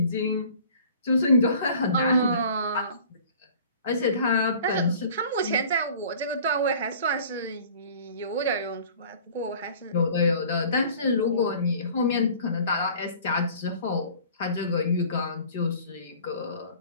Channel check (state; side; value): inverted; both; correlation -0.48